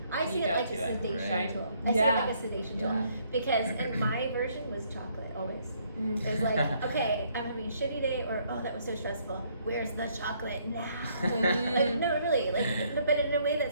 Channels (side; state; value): both; inverted; correlation -0.68